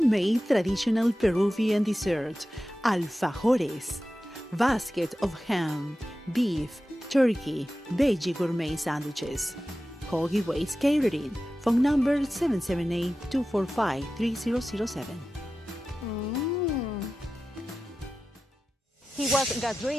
traditional Peruvian dessert, alfajores, basket of ham, beef, turkey, veggie gourmet sandwiches. Call Giveaways Catering, phone number 778-245-3007. He was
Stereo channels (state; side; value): normal; both; correlation 0.94